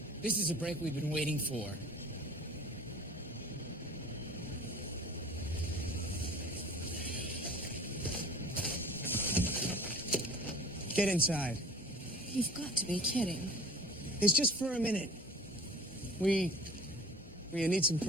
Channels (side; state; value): both; normal; correlation 0.44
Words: This is a break we've been waiting for. Get inside. You've got to be kidding. It's just for a minute. We need some